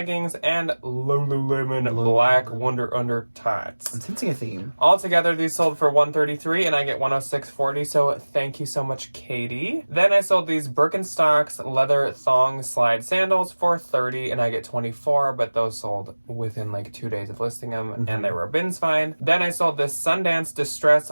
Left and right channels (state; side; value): inverted; both; correlation -1.00